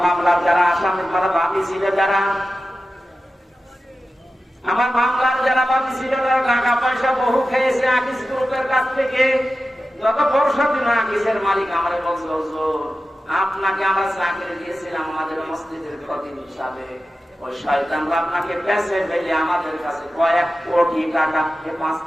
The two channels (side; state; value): both; normal; correlation 0.93